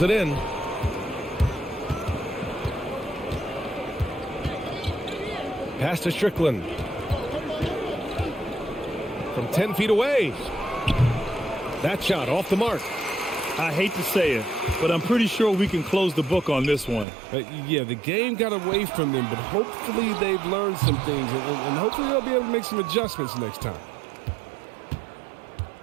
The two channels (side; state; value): left; drops out; at 17.1 s